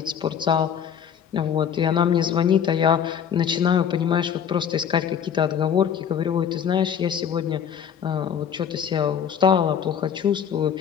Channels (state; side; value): quieter; right; 8.2 dB